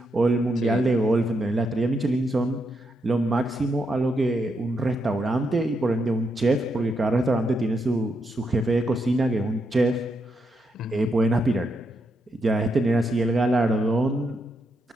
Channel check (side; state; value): both; normal; correlation 0.81